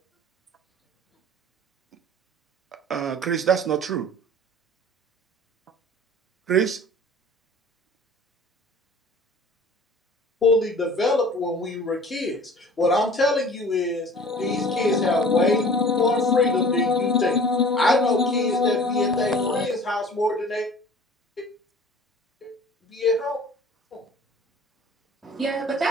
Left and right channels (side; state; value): both; normal; correlation 0.46